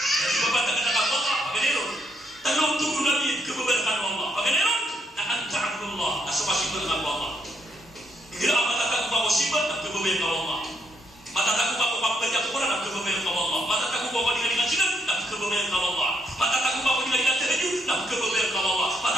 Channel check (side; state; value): both; normal; correlation 0.75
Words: Ibabantah na nakaku Allah, pagkaniron. Tanong tubo namin, kababarkan Allah. Pagkaniron, na anta'abullah, na sumasibot ng Allah. Hindi ang matatago pa ko sibat, na kababayan ka Allah. Matatago pa ko pagpagya ko na, na kababayan ka Allah. Matatago pa ko nilalingan sinan, na kababayan ka Allah. Matatago pa ko nilalingan tahajud, na kababayan ka Allah.